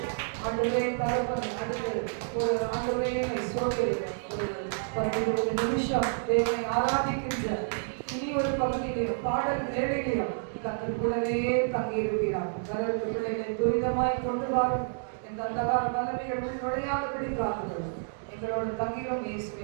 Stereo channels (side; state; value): left; silent; digital silence